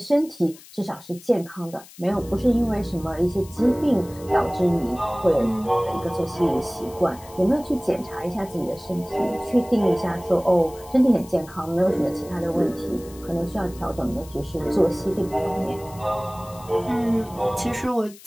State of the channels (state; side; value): noise; left; hiss, 21 dB below the sound